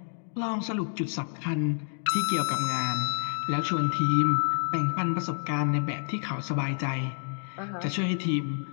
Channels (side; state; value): right; silent; digital silence